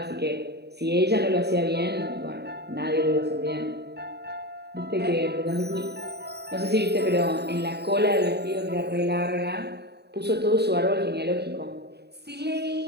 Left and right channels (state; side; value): late; left; 0.48 ms